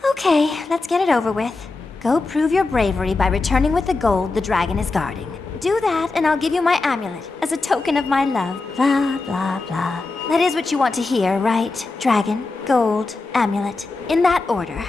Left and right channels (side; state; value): right; quieter; 3.6 dB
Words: Okay, let's get it over with. Go prove your bravery by returning with the gold the dragon is guarding. Do that, and I'll give you my amulet as a token of my love. Blah, blah, blah. That is what you want to hear, right? Dragon, gold, amulet. In that order.